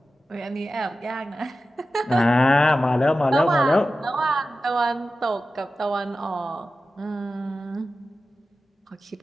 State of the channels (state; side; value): normal; both; correlation 0.93